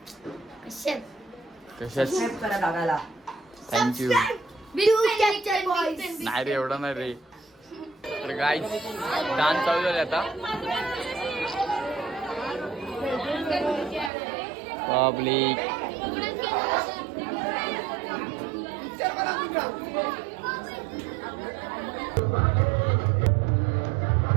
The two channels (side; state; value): left; drops out; at 14.1 s